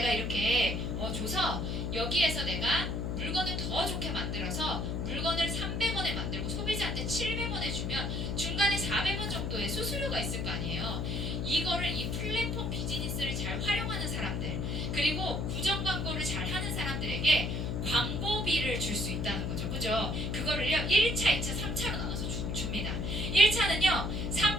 이렇게 줘서 여기에서 내가 물건을 더 좋게 만들어서 물건을 300원에 만들고 소비자한테 700원에 주면 중간에 400원 정도의 수수료가 있을 거 아니에요. 이거를 이 플랫폼 비즈니스를 잘 활용하는 사람들 그리고 구정 광고를 잘 하는 사람들에게 광고비를 줄 수 있다는 거죠. 그죠? 그거를요 1차, 2차, 3차로 나눠서 줍니다. 1차는요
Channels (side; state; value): left; noise; hum, 1 dB below the sound